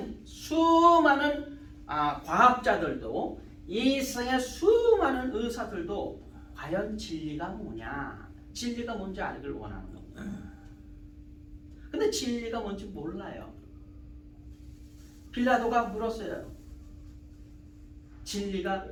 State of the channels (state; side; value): identical; both; correlation 1.00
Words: 수많은 과학자들도 이 세상의 수많은 의사들도 과연 진리가 뭐냐, 진리가 뭔지 알기를 원하는 겁니다. 근데 진리가 뭔지 몰라요. 빌라도가 물었어요. 진리가